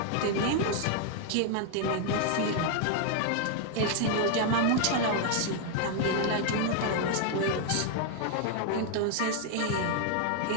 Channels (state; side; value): different; both; correlation 0.00